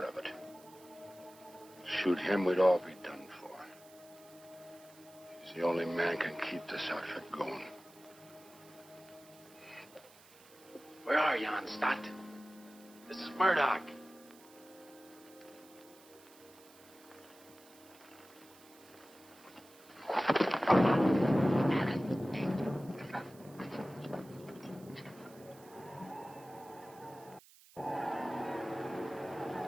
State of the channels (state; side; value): noise; right; hiss, 23 dB below the sound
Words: of it. Shoot him, we'd all be done for. He's the only man can keep this outfit going. Where are you, Stott? This is Murdoch.